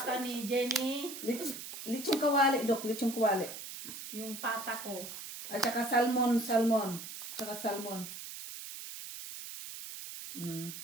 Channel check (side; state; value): right; noise; hiss, 10 dB below the sound